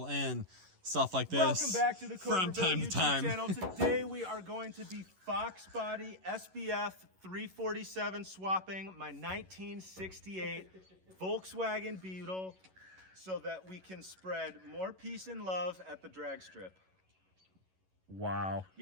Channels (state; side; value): late; left; 11 ms